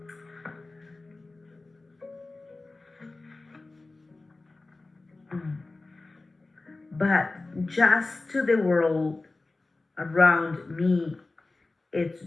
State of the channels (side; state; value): right; quieter; 3.3 dB